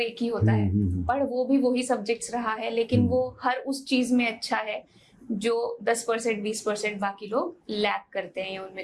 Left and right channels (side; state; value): both; identical; correlation 1.00